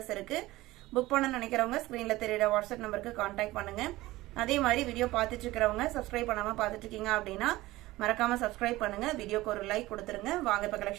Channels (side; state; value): left; quieter; 18.2 dB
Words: இருக்கு. புக் பண்ணனும்னு நினைக்கிறவங்க ஸ்கிரீன்ல தெரியுற வாட்ஸ்அப் நம்பருக்கு கான்டாக்ட் பண்ணுங்க. அதே மாதிரி வீடியோ பார்த்துட்டு இருக்கறவங்க சப்ஸ்கிரைப் பண்ணாம பார்த்துட்டு இருக்கீங்க அப்படினா மறக்காம சப்ஸ்கிரைப் பண்ணுங்க. வீடியோக்கு ஒரு லைக் கொடுத்துருங்க. வாங்க இப்ப